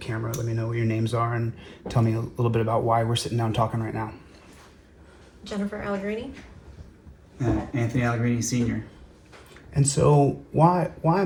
Let me know what your names are and tell me a little bit about why we're sitting down talking right now. Jennifer Allegrini. Anthony Allegrini Sr. And so why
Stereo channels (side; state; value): both; identical; correlation 1.00